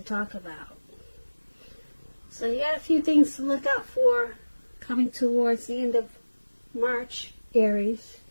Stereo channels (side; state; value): both; inverted; correlation -1.00